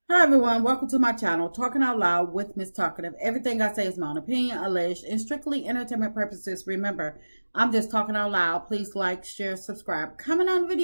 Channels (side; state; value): both; inverted; correlation -1.00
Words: Hi everyone, welcome to my channel, Talking Out Loud with Miss Talkative. Everything I say is my own opinion, alleged, and strictly entertainment purposes. Remember, I'm just talking out loud. Please like, share, subscribe. Comment on the